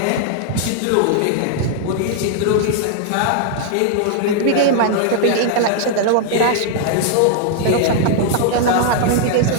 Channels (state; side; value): different; both; correlation -0.01